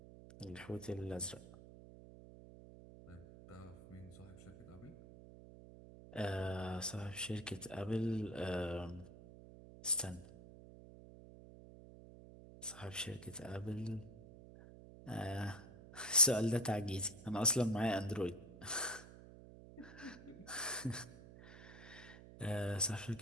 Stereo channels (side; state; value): right; noise; hum, 17 dB below the sound